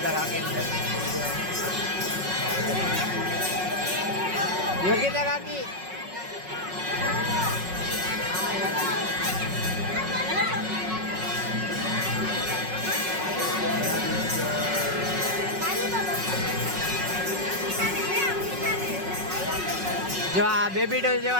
કાકીને યોગ્યતા કાકી જો આ બેબી ડોલ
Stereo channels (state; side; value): late; left; 5.4 ms